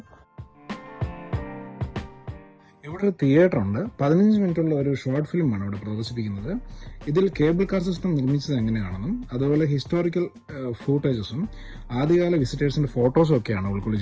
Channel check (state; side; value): identical; both; correlation 1.00